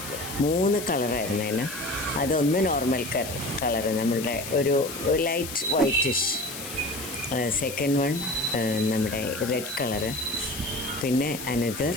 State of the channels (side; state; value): left; noise; hiss, 9 dB below the sound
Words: മൂന്ന് കളറായിരുന്നു അതിന്. അതൊന്ന് നോർമൽ കളറ്, നമ്മളുടെ ഒരു ലൈറ്റ് വൈറ്റിഷ്. സെക്കൻഡ് വൺ നമ്മുടെ റെഡ് കളറ്, പിന്നെ അനദർ